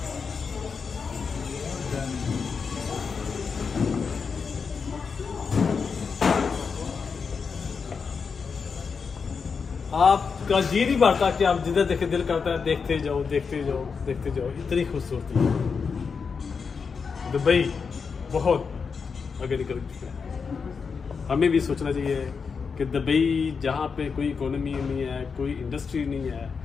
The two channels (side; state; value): right; quieter; 5.6 dB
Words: आपका जी नहीं बढ़ता कि आप जिधर देखे दिल करता है देखते जाओ देखते जाओ देखते जाओ। इतनी खूबसूरती है दुबई, बहुत आगे निकल चुका है। हमें भी सोचना चाहिए कि दुबई जहाँ पे कोई इकोनॉमी नहीं है, कोई इंडस्ट्री नहीं है,